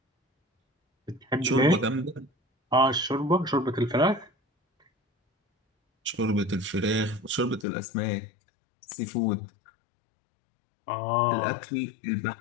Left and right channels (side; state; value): right; drops out; at 7.7 s